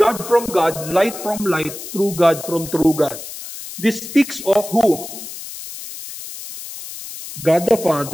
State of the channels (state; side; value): noise; left; hiss, 11 dB below the sound